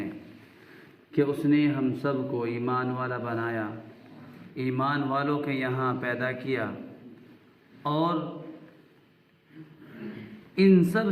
کہ اس نے ہم سب کو ایمان والا بنایا، ایمان والوں کے یہاں پیدا کیا، اور ان سب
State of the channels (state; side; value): identical; both; correlation 1.00